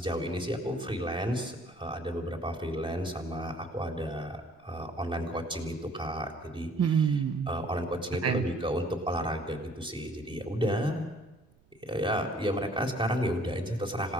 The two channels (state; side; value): noise; right; rumble, 30 dB below the sound